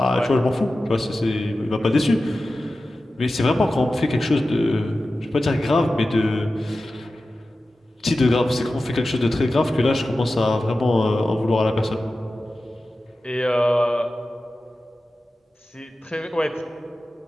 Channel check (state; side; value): normal; both; correlation 0.94